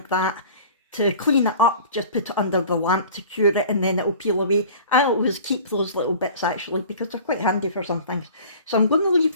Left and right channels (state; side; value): inverted; both; correlation -0.44